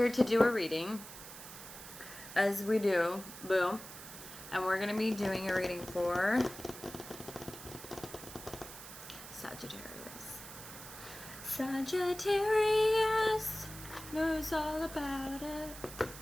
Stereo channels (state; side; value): noise; right; hiss, 13 dB below the sound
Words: to do a reading, as we do, boom. And we're going to be doing a reading for Sagittarius. Sagittarius knows all about it.